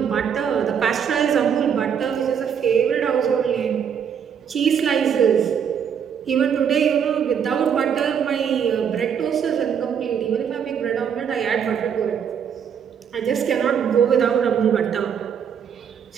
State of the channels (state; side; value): quieter; left; 7.7 dB